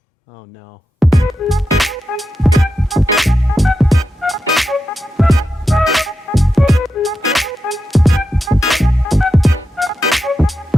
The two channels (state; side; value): normal; both; correlation 0.88